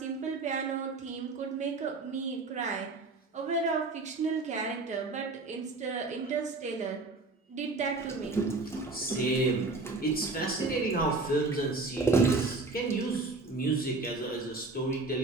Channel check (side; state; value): left; quieter; 3.5 dB